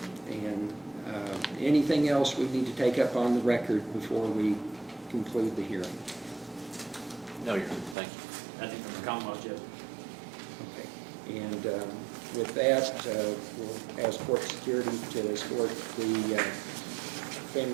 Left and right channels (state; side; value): drops out; left; at 8.0 s